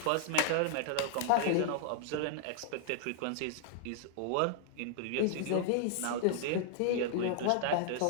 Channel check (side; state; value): both; different; correlation -0.01